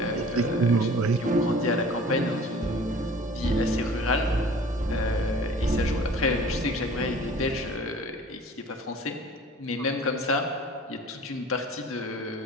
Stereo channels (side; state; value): both; normal; correlation 0.46